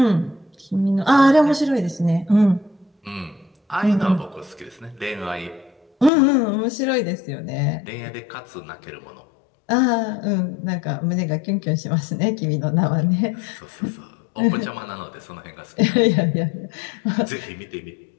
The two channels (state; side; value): drops out; right; at 6.1 s